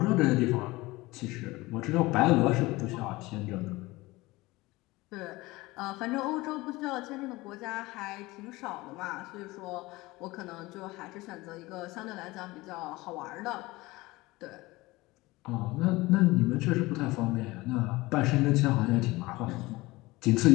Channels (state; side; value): quieter; right; 20.8 dB